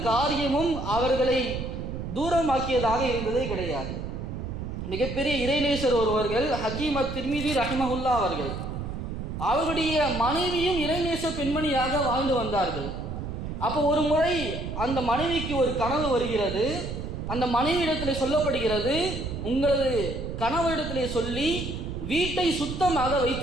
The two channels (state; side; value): noise; right; rumble, 6 dB below the sound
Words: காரியமும் அவர்களை தூரமாக்கியதாக இருந்ததே கிடையாது. மிகப்பெரிய இறைநேசர் ஒருவர்கள் ஹக்கீம் அத்-திர்மிதி ரஹிமஹுல்லா அவர்கள், அவருடைய மனைவியும் இறைநேச பெண்மணியாக வாழ்ந்து வந்தார்கள். அப்போ ஒரு முறை அந்த மனைவிக்கு ஒரு கனவு வருகிறது. அந்த மனைவியிடத்திலே சொல்லப்படுகிறது, உங்களது கணவரிடத்திலே சொல்லி வீட்டை சுத்தமாக